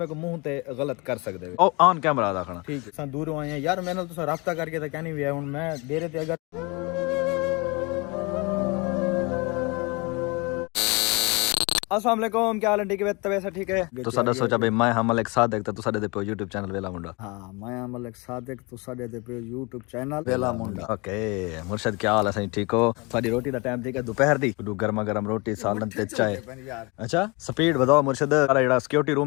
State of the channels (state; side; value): quieter; right; 27.6 dB